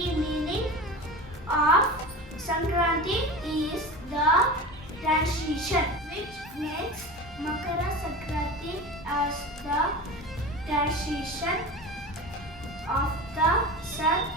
meaning of Sankranti is the transition, which makes Makara Sankranti as the transition of the sun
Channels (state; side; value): normal; both; correlation 0.31